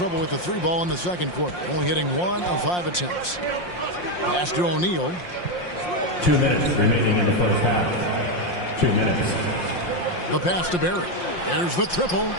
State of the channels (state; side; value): late; right; 5.7 ms